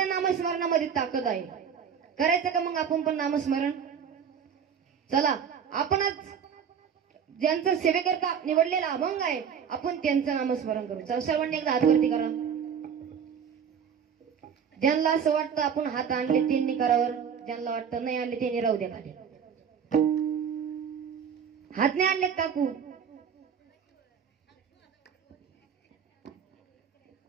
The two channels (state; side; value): quieter; left; 7.5 dB